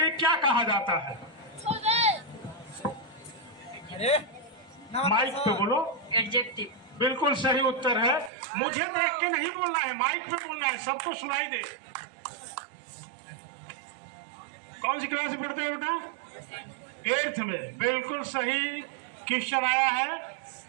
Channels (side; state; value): left; drops out; at 8.3 s